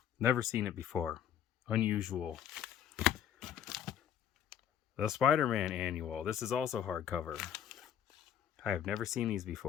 Never seen it before. Unusual. The Spider-Man Annual. This is also hardcover. I have never seen these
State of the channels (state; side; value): quieter; right; 9.4 dB